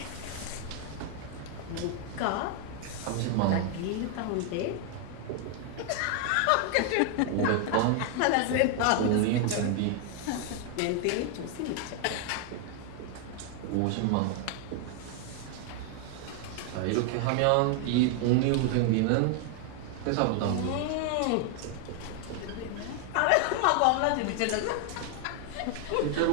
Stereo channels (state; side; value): different; both; correlation 0.00